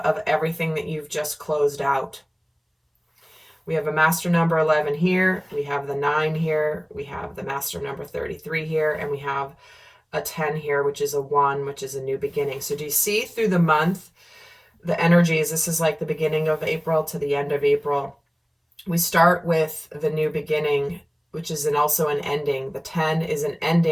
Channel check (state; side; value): identical; both; correlation 1.00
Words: everything that you've just closed out. We have a master number 11 here. We have the 9 here. We have the master number 33 here. And we have a 10 here, which is a 1, which is a new beginning. So do you see through the month, the energies? This is like the beginning of April to the end of April. We start with the new beginning, which is also an ending. The 10 is an